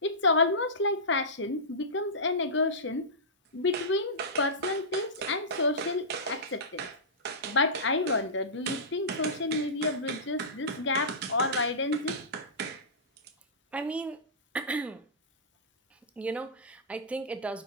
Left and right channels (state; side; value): normal; both; correlation -0.18